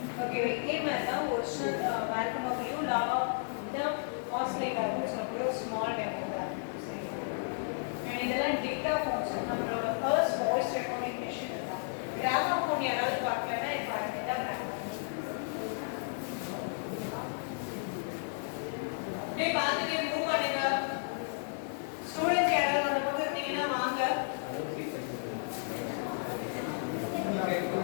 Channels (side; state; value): right; silent; digital silence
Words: ஓகே, இதே மாதிரி தான் ஒரிஜினல் வேல்கனோக்கிலையும் லாவா தான் ஆஸ்லேட் ஆகும்னு சொல்லக்கூடிய ஒரு ஸ்மால் டெமோ தான். அண்ட் இதெல்லாம் டேட்டா ஃபோன்ஸ் நம்மளோட ஃபர்ஸ்ட் வாய்ஸ் ரெக்கார்டிங் மிஷின் தான். கிராமஃபோன் யாராவது பார்க்கலன்னா இப்போ அதுதான் கிராமஃபோன். டே பார்த்துட்டு மூவ் பண்ணுங்க. ஸ்டூடெண்ட்ஸ் யாராவது அந்த பக்கம் இருந்தீங்கன்னா வாங்க.